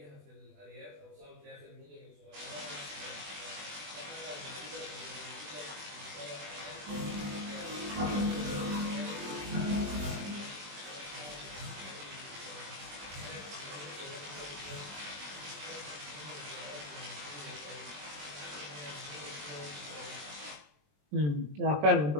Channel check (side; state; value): left; late; 20 ms